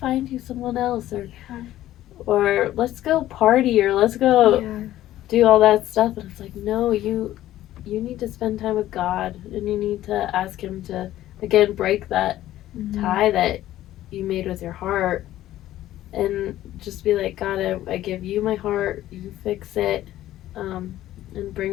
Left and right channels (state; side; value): quieter; right; 13.9 dB